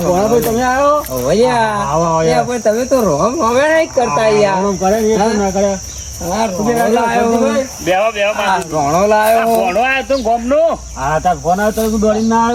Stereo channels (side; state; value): both; identical; correlation 1.00